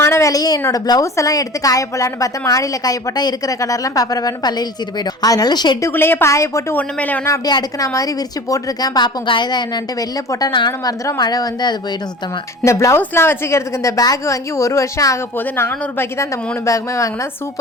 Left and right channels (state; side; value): normal; both; correlation 0.39